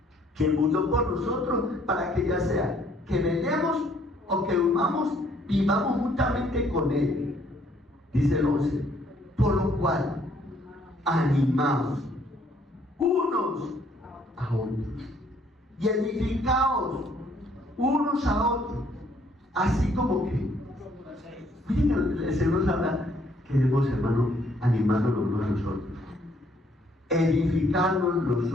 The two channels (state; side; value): normal; both; correlation 0.65